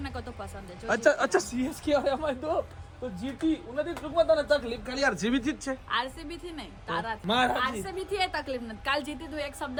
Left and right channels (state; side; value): identical; both; correlation 1.00